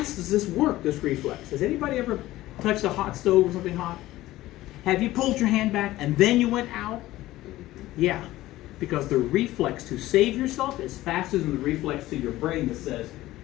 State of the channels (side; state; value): right; quieter; 16.4 dB